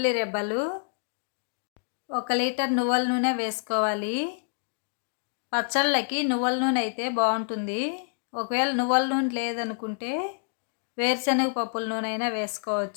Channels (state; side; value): silent; right; digital silence